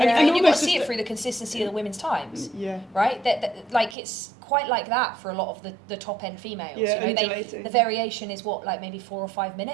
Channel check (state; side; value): drops out; left; at 4.0 s